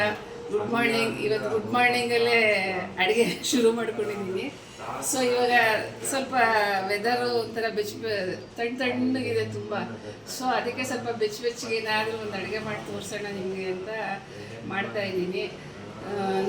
Good morning. ಇವತ್ತು ಗುಡ್ ಮಾರ್ನಿಂಗಲ್ಲೇ ಅಡುಗೆ ಶುರು ಮಾಡ್ಕೊಂಡಿದ್ದೀನಿ. ಸೊ ಇವಾಗ ಸ್ವಲ್ಪ ವೆದರು ಒಂಥರ ತಣ್ಣಗಿದೆ ತುಂಬ. ಸೊ ಅದಕ್ಕೆ ಸ್ವಲ್ಪ ಬೆಚ್ಚಗೆ ಏನಾದರೂ ಒಂದು ಅಡುಗೆ ಮಾಡಿ ತೋರಿಸೋಣ ನಿಮಗೆ ಅಂತ ಮಾಡ್ತಾಯಿದ್ದೀನಿ.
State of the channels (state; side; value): identical; both; correlation 1.00